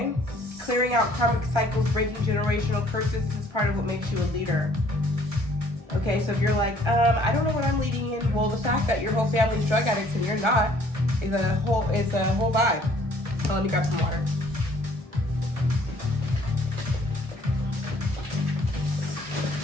clearing out karmic cycles, breaking generational curses. This is part of what makes you a leader. Okay, so if you're like, I don't know what I'm leading in, well, the fact that your whole family's drug addicts and you're not is a whole vibe. So let me grab some water.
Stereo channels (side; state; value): left; late; 1.4 ms